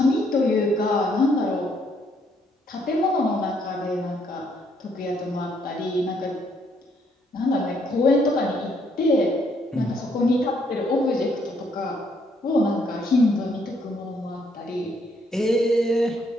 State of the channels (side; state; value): both; normal; correlation 0.70